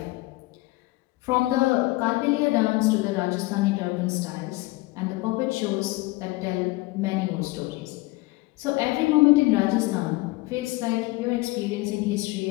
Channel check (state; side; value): quieter; right; 21.2 dB